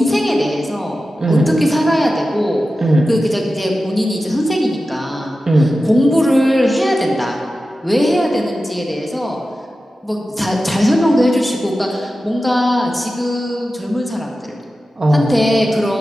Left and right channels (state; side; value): normal; both; correlation 0.93